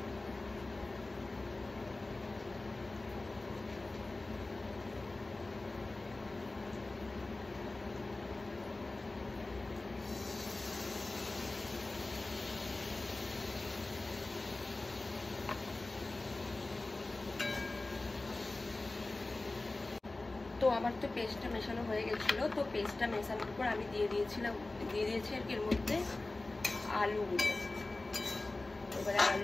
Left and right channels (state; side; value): quieter; right; 3.1 dB